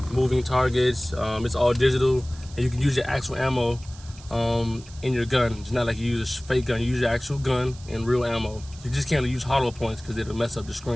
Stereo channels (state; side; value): noise; right; hiss, 21 dB below the sound